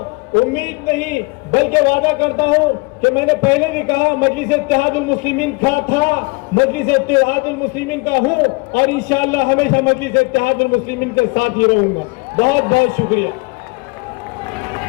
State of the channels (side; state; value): right; quieter; 28.7 dB